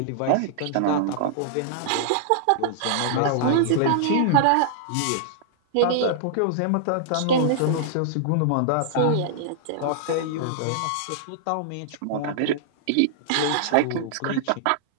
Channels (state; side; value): different; both; correlation -0.01